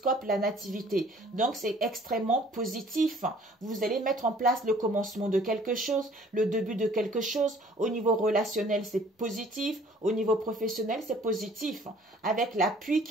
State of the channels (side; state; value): both; normal; correlation 0.55